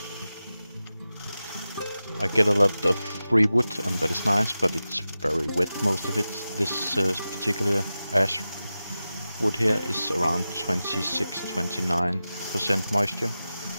I get a lot of free wood and that is nice, but it's very wet, most of it. This particular ash wood here is around 26-29% moisture,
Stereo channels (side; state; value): both; inverted; correlation -0.94